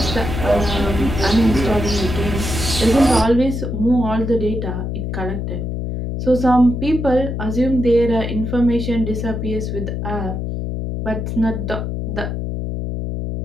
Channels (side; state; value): left; noise; hum, 3 dB below the sound